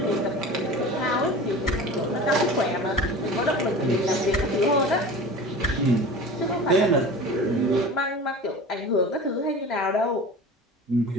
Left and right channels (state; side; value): normal; both; correlation 0.36